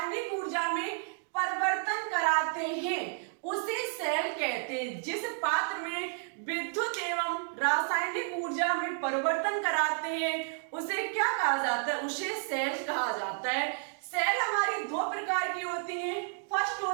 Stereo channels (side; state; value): left; silent; 57 dB below the other